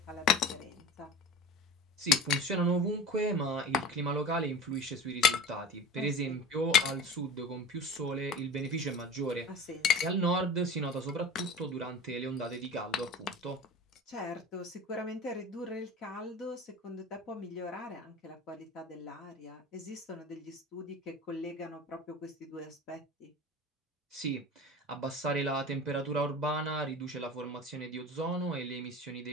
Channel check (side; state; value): both; normal; correlation 0.35